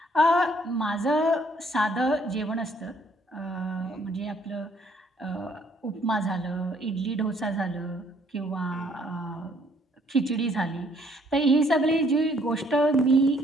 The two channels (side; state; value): both; normal; correlation 0.64